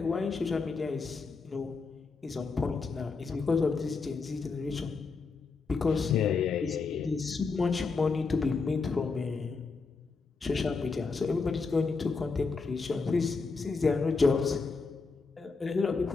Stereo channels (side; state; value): right; quieter; 4.5 dB